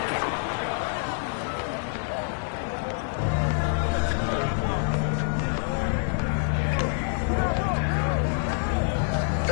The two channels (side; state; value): right; silent; 61 dB below the other